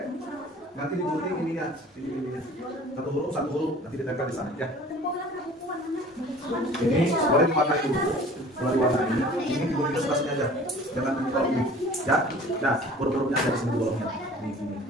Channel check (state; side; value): normal; both; correlation 0.46